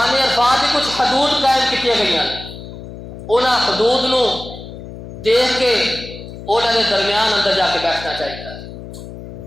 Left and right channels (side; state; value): left; noise; hum, 13 dB below the sound